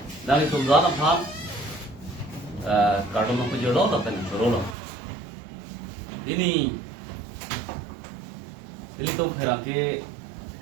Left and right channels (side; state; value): left; drops out; at 4.8 s